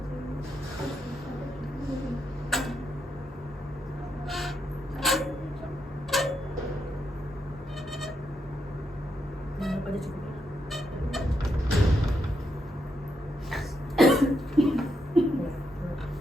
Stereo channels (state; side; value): normal; both; correlation 0.81